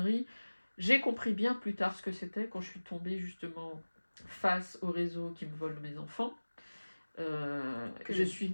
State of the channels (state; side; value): inverted; both; correlation -1.00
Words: J'ai compris bien plus tard ce que c'était quand je suis tombée justement face au réseau qui me vole mes enfants.